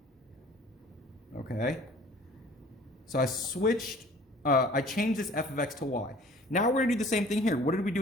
okay? So I changed this f of x to y. Now we're going to do the same thing here. What did we do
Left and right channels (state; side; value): normal; both; correlation 0.50